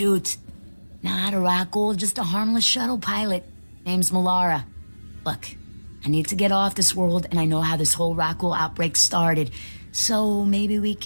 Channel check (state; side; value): inverted; both; correlation -1.00